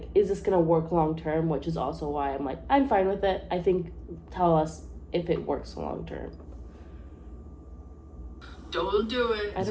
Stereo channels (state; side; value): identical; both; correlation 1.00